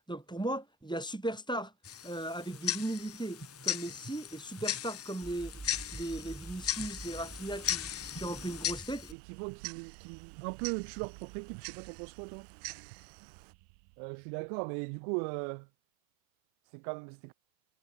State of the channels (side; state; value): left; drops out; at 9.2 s